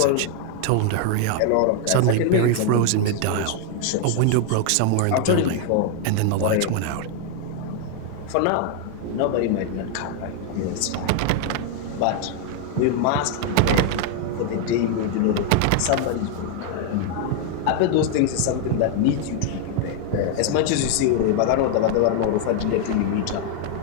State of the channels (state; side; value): different; both; correlation 0.00